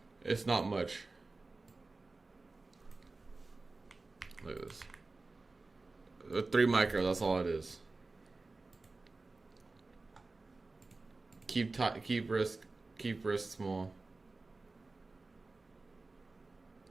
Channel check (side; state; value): left; quieter; 3.5 dB